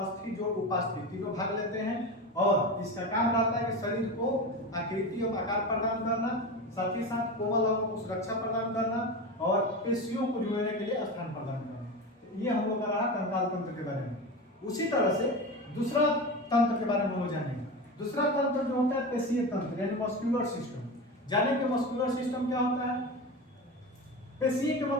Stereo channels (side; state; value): both; normal; correlation 0.25